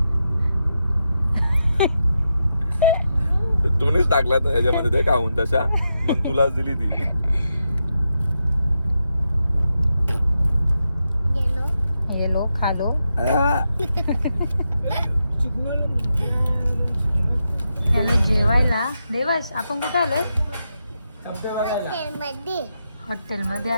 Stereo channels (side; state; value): both; inverted; correlation -0.86